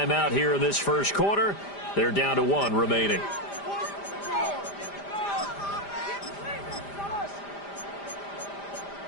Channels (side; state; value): right; late; 5.0 ms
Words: here in this first quarter. They're down to 1 remaining.